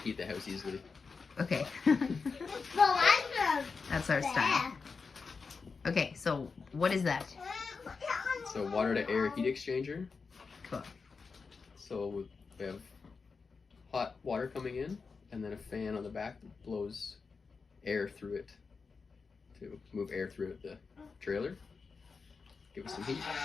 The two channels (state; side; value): quieter; right; 4.9 dB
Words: heat the house easily. okay. That's our style. Okay, so what is that? So water to air heat exchanger. Cool. So we have hot water coming in, and then a fan on the back that blows air through it to move air through the trailer. Give us some heat.